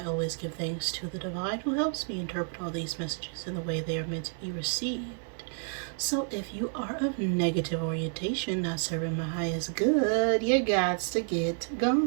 always give thanks to the divine who helps me interpret all these messages in the way they are meant to be received. So if you are of negative orientation, not serving my highest good, you got to get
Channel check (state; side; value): silent; left; 58 dB below the other